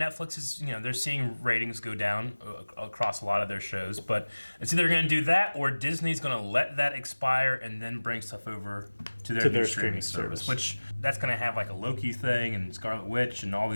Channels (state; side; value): inverted; both; correlation -1.00